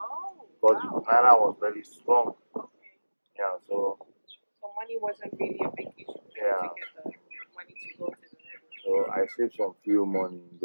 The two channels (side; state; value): both; inverted; correlation -1.00